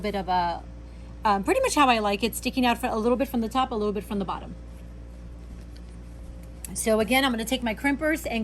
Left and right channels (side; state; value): both; identical; correlation 1.00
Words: of a, pretty much how I like it, sticking out for a little bit from the top, a little bit from the bottom. So again, I'm going to take my crimpers